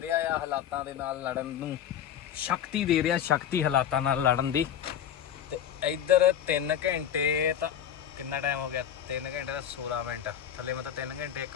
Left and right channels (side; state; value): right; quieter; 9.5 dB